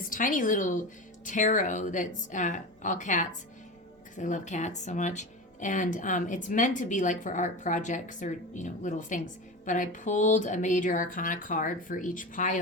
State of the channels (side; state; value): both; normal; correlation 0.26